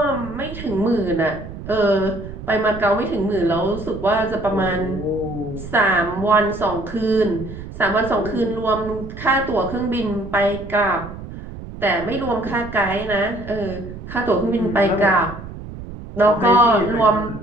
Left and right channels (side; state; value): right; noise; rumble, 12 dB below the sound